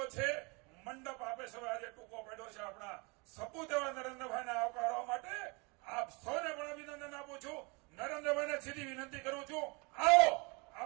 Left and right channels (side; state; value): left; quieter; 29.4 dB